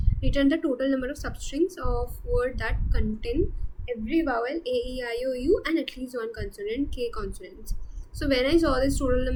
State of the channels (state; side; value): identical; both; correlation 1.00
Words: Return the total number of substrings of word that contain every vowel a, e, I, o, u and at least one consonant k consonants. So when I saw this total